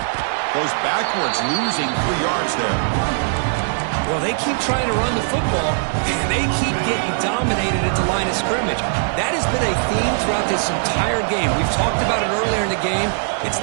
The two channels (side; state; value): left; silent; digital silence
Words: Goes backwards, losing 3 yards there. Well, they keep trying to run the football, and they keep getting dominated at the line of scrimmage. That has been a theme throughout this entire game. We've talked about it earlier in the game. It's